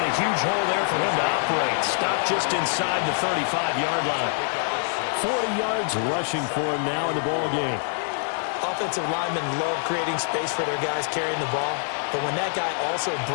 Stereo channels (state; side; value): silent; right; 62 dB below the other